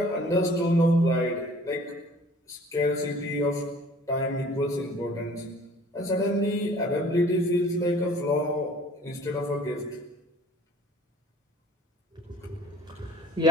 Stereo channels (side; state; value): both; normal; correlation 0.51